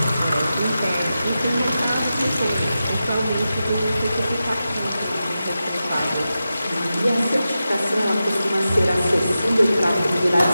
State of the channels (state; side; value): inverted; both; correlation -0.92